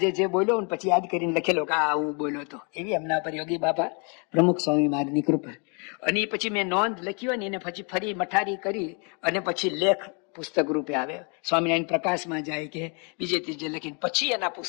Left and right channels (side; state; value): right; quieter; 35.4 dB